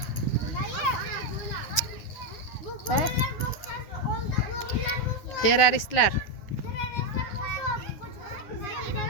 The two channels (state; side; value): late; right; 9.5 ms